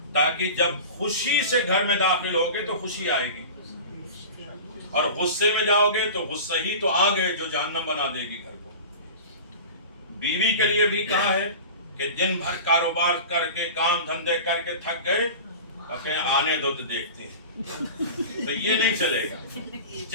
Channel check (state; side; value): inverted; both; correlation -0.34